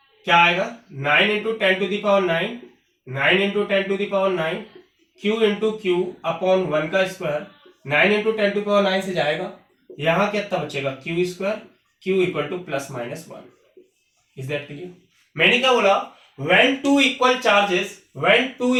क्या आएगा 9 into 10 to the power 9, 9 into 10 to the power 9, Q into Q upon 1 का स्क्वायर। 9 इंटू 10 टू पावर 9 से जाएगा, यहां कितना बचेगा Q square, Q equal two plus minus 1। Is that clear? मैंने क्या बोला, when two equal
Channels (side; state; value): both; identical; correlation 1.00